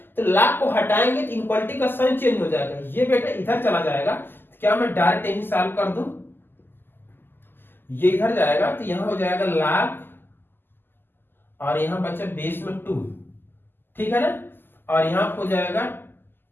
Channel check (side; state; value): right; late; 0.096 ms